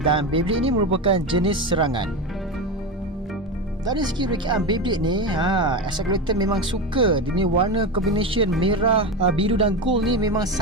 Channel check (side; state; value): both; normal; correlation 0.19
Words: dan Beyblade ini merupakan jenis serangan. Dari segi rekaan Beyblade ni, SM Collector memang suka. Dia ni warna combination merah, biru dan gold ni memang